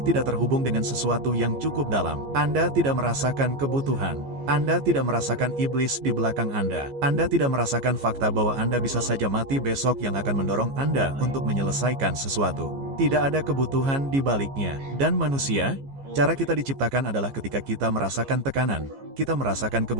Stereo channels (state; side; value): late; left; 15 ms